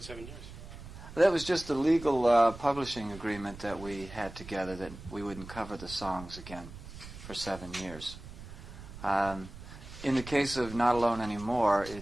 7 years? That was just a legal publishing agreement that we had together that we wouldn't cover the songs again for 7 years. In the case of Not Alone Anymore,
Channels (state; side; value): noise; right; rumble, 14 dB below the sound